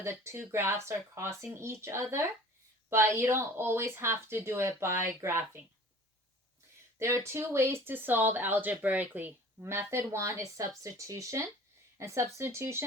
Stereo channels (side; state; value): both; normal; correlation 0.45